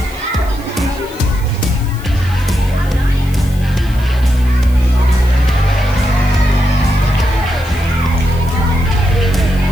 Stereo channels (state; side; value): noise; left; hiss, 22 dB below the sound